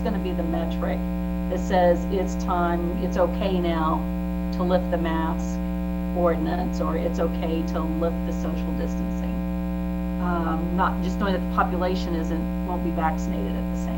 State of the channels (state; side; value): identical; both; correlation 1.00